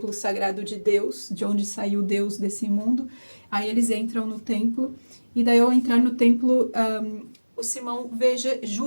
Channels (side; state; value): both; inverted; correlation -1.00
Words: sagrado de Deus, de onde saiu Deus desse mundo, aí eles entram no templo, e daí ao entrar no templo, o Simão veja